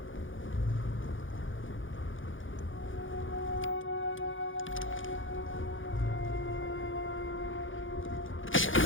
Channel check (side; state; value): right; late; 0.57 ms